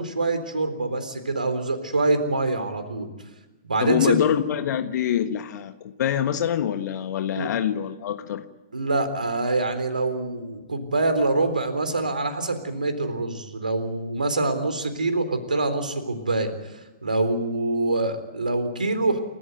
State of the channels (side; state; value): both; inverted; correlation -0.62